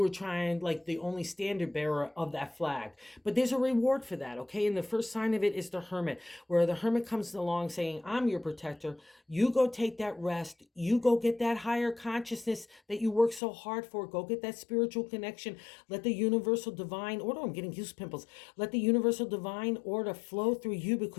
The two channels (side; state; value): right; drops out; at 13.4 s